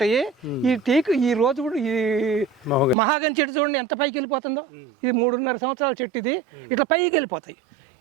ఈ రోజ్వుడ్, ఈ మహాగని చెట్టు చూడండి ఎంత పైకి వెళ్ళిపోతుందో. ఇది 3.5 సంవత్సరాల చెట్టు, ఇది ఇట్లా పైకి వెళ్ళిపోతాయి.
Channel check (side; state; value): left; drops out; at 3.0 s